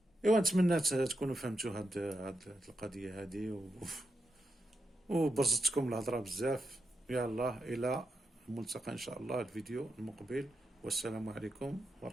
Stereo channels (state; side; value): normal; both; correlation 0.86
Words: ايوا نتمنى تكونوا فهمتوا هاد القضيه هذه وبرزتكم الهضره بزاف. يلا الى الملتقى ان شاء الله الفيديو المقبل، والسلام عليكم